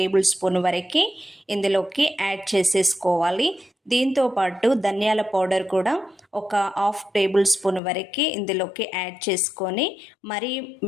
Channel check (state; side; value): drops out; right; at 7.8 s